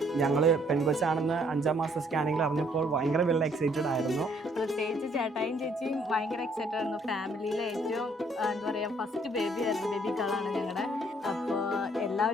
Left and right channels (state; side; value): normal; both; correlation 0.65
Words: ഞങ്ങൾ പെൺകൊച്ചാണെന്ന് 5ാം മാസം സ്കാനിങ്ങിൽ അറിഞ്ഞപ്പോൾ ഭയങ്കര വെൽ എക്സൈറ്റഡ് ആയിരുന്നു. പ്രത്യേകിച്ച് ചേട്ടായും ചേച്ചിയും ഭയങ്കര എക്സൈറ്റഡ് ആയിരുന്നു. ഫാമിലിയിലെ ഏറ്റവും എന്താ പറയുക ഫസ്റ്റ് ബേബി ആയിരുന്നു, ബേബി ഗേളാണ് ഞങ്ങളുടെ. അപ്പോൾ